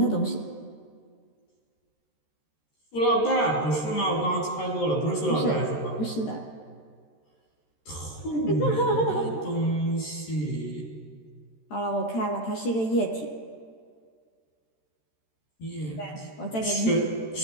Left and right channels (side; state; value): right; late; 13 ms